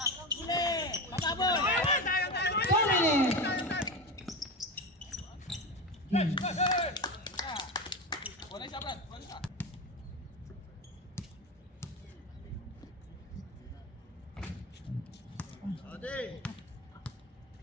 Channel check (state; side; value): normal; both; correlation 0.21